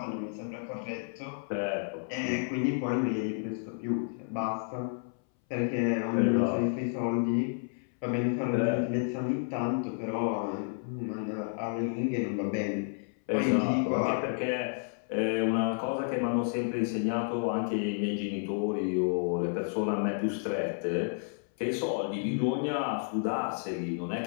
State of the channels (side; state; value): right; silent; 57 dB below the other